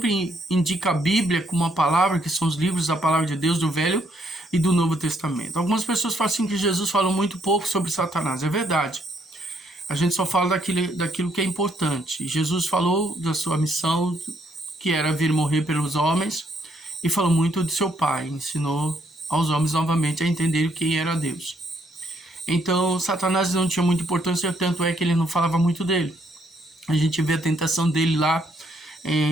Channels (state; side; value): normal; both; correlation 0.71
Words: indica a Bíblia como uma palavra, que são os livros da palavra de Deus, do Velho e do Novo Testamento. Algumas pessoas falam assim que Jesus falou muito pouco sobre Satanás. É verdade. A gente só fala daquilo que é importante. Jesus falou da sua missão, que era vir morrer pelos homens, e falou muito de seu Pai. Ensinou aos homens novamente a entender quem era Deus. Então, Satanás não tinha muita importância, tanto é que ele não falava muito dele. A gente vê a tentação dele lá,